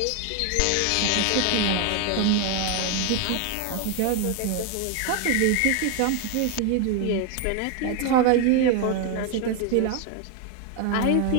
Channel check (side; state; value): both; different; correlation 0.01